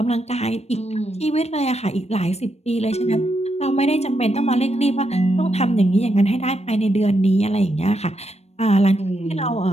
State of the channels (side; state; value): right; late; 0.31 ms